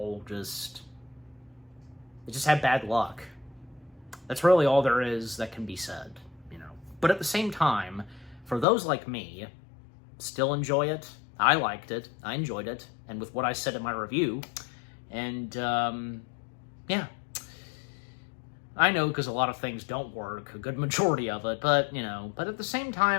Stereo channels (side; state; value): right; drops out; at 8.7 s